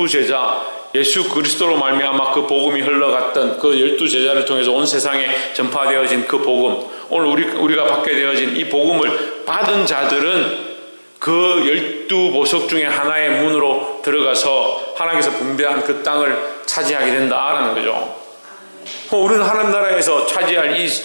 예수 그리스도로 말미암아 그 복음이 흘러갔던 그 12제자를 통해서 온 세상에 전파되어진 그 복음, 오늘 우리가 받게 되어진 이 복음을 받은 자들은 그 12보석 중에 하나의 문으로 들어가서 하나님께서 분배한 그 땅을 차지하게 된다라는 거죠. 우리는 하나님 나라에서 차지할 이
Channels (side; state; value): both; inverted; correlation -1.00